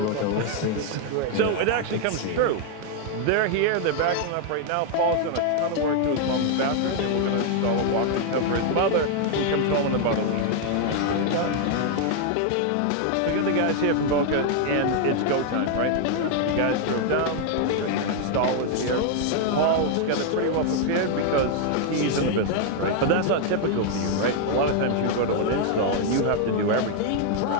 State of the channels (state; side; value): different; both; correlation 0.00